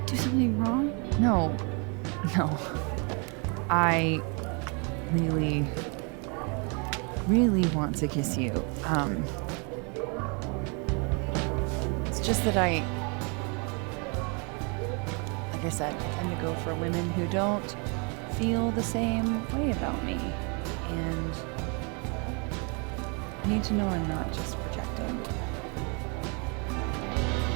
do something wrong? No. I really want to kiss you. It's just that like I said, I tend to go for women who don't feel the same way about me. And I need to know I'm not just projecting.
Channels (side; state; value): left; quieter; 34.5 dB